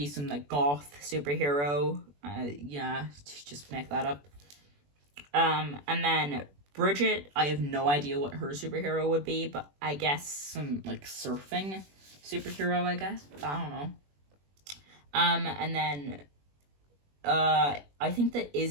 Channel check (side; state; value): left; late; 21 ms